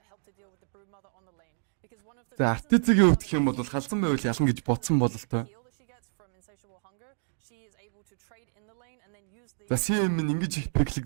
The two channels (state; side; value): silent; left; digital silence